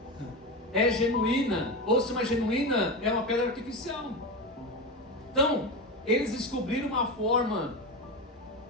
é genuína ou se uma genuína é uma pedra artificial. Então, eles descobriram uma forma,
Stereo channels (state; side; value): normal; both; correlation 0.19